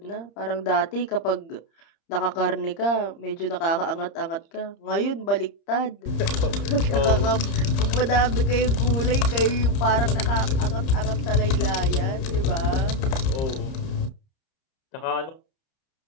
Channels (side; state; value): right; late; 30 ms